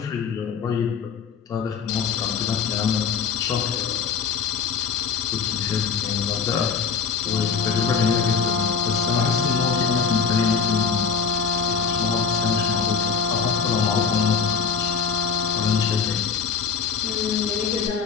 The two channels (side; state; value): right; quieter; 6.1 dB